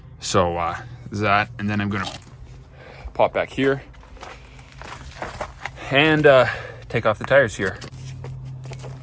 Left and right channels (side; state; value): both; identical; correlation 1.00